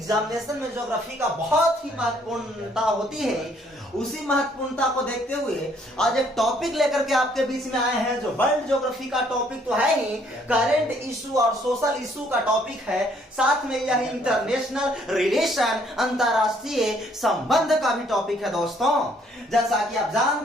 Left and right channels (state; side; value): normal; both; correlation 0.65